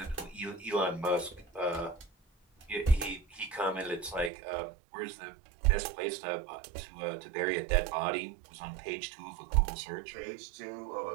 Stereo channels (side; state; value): left; drops out; at 4.3 s